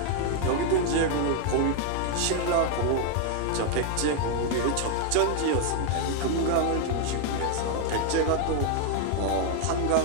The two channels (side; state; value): both; different; correlation 0.00